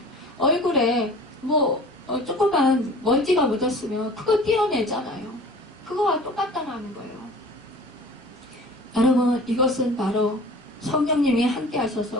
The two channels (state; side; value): normal; both; correlation 0.43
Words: 얼굴에 조그만 먼지가 묻었으면 그거 떼어내잖아요. 그거와 똑같다는 거예요. 여러분, 이것은 바로 성령님이 함께